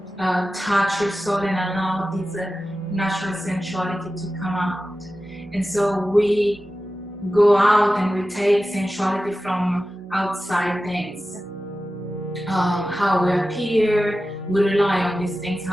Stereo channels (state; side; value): normal; both; correlation 0.94